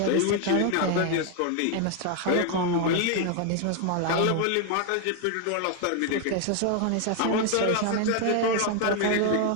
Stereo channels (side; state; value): both; different; correlation 0.00